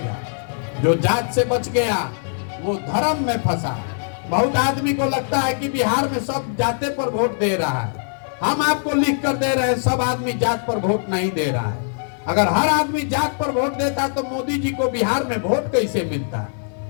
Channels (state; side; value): silent; right; 65 dB below the other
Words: जो जात से बच गया वो धर्म में फंसा। बहुत आदमी को लगता है कि बिहार में सब जाते पर वोट दे रहा है। हम आपको लिख कर दे रहे हैं, सब आदमी जात पर वोट नहीं दे रहा है। अगर हर आदमी जात पर वोट देता तो मोदी जी को बिहार में वोट कैसे मिलता?